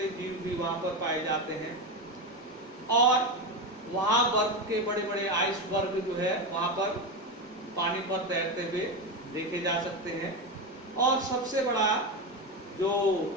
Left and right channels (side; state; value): both; normal; correlation 0.16